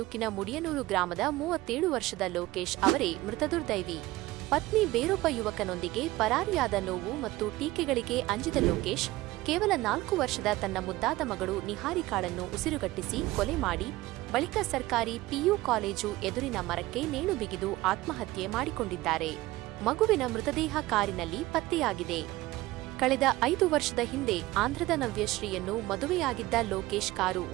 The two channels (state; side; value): quieter; left; 18.3 dB